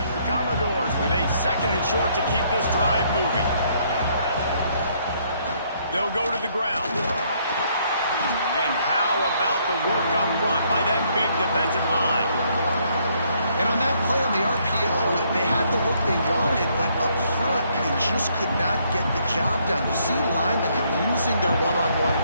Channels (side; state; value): both; inverted; correlation -0.69